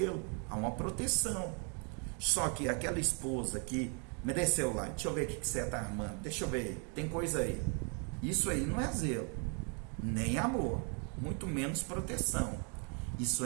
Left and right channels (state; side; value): quieter; left; 37.4 dB